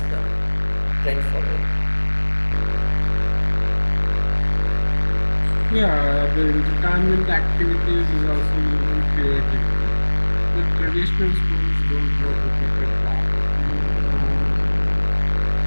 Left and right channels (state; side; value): inverted; both; correlation -1.00